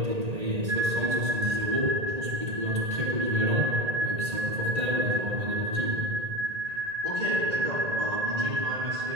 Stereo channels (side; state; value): left; late; 1.8 ms